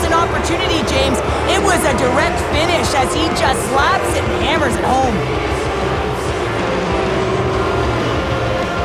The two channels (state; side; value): identical; both; correlation 1.00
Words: an opportunity, James. It was a direct finish as he just slaps it and hammers it home.